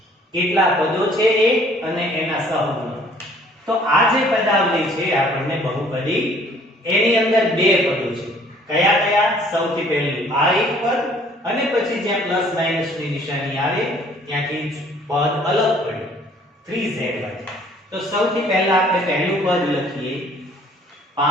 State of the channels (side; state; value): both; normal; correlation 0.57